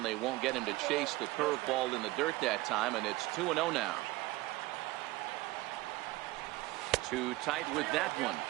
they won't get him to chase the curveball in the dirt that time, and it's 2-0 now. Too tight with that one.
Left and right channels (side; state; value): left; quieter; 19.7 dB